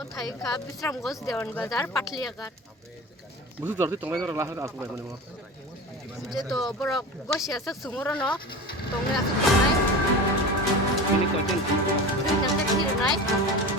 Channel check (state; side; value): normal; both; correlation 0.31